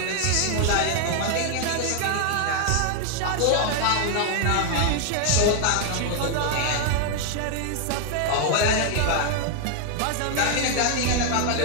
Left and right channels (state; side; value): different; both; correlation 0.00